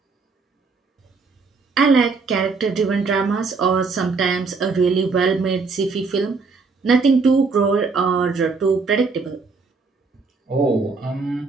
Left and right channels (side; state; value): left; quieter; 4.4 dB